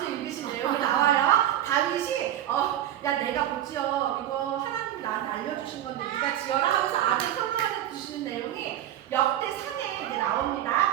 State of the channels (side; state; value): left; quieter; 11.9 dB